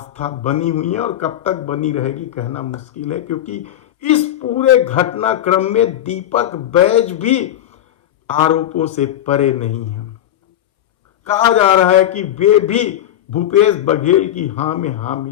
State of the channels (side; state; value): right; quieter; 11.8 dB